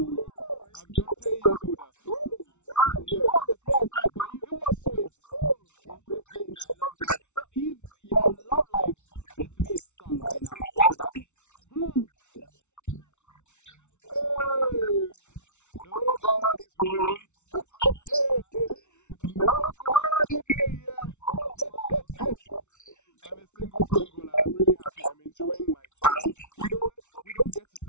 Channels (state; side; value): late; right; 0.83 ms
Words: I've done 10 years older. Ooh, wow. Yeah. How was the experience like for you? It was sweet. Oh, interesting. I love that. So if your love life were to be a song right now, what would that be? Hey, nobody's home. Nobody there yet. Oh, wow. I'm a single Pringle and I'm really happy. I'm enjoying my time. We don't get to